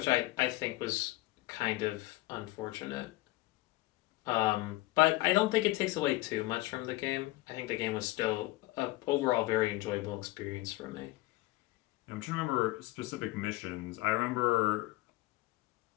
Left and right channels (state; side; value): quieter; right; 19.3 dB